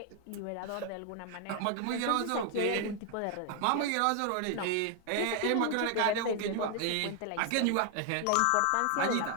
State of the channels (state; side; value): different; both; correlation 0.01